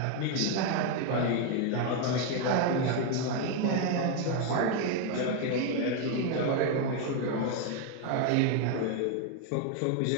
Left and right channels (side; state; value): both; different; correlation 0.01